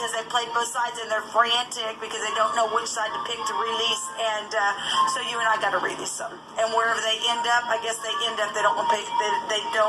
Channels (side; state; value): both; identical; correlation 1.00